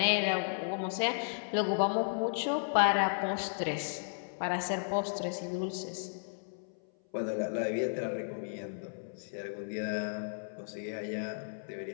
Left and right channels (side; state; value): right; silent; 55 dB below the other